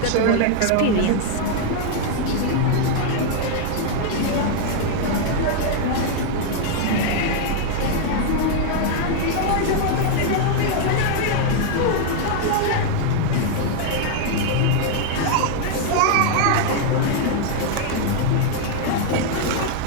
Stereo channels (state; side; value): different; both; correlation 0.00